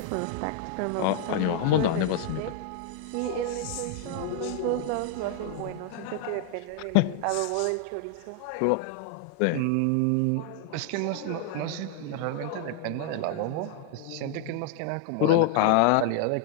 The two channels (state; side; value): different; both; correlation 0.00